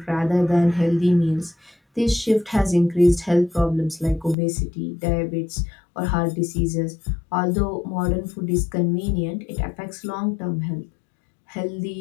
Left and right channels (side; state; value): right; drops out; at 4.4 s